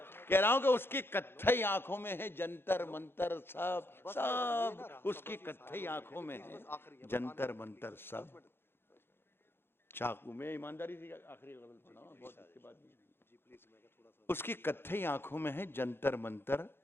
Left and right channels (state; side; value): late; right; 0.11 ms